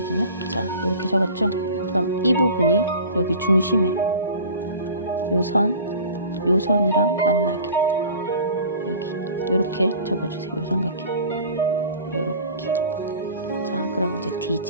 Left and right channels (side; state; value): both; inverted; correlation -0.41